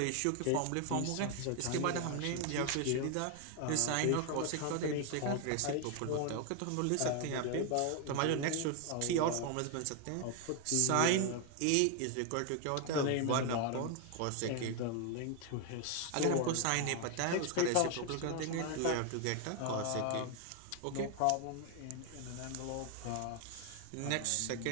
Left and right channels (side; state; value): both; different; correlation 0.01